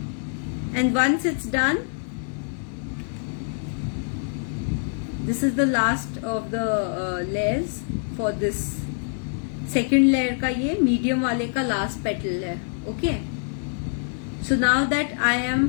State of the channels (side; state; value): right; silent; digital silence